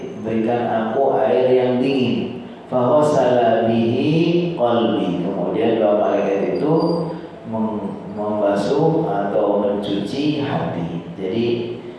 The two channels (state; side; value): identical; both; correlation 1.00